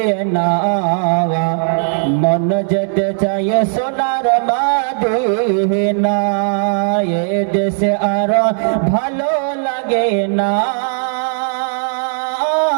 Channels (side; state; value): left; silent; digital silence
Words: না, মন যেতে চায় সোনার মদিনা। এ দেশে আর ভালো লাগে না